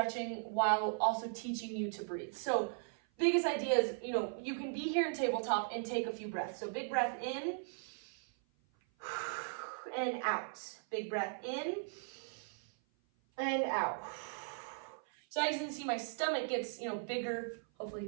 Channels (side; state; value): left; silent; 52 dB below the other